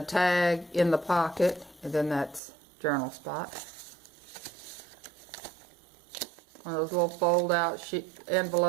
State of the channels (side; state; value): left; drops out; at 2.4 s